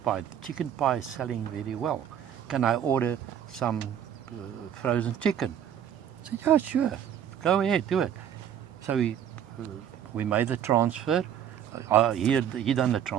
pie? The chicken pie is selling very well. Can I order some frozen chicken? I said, yeah, sure. Go ahead, do it. So we made the transfer. He done the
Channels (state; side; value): quieter; left; 9.4 dB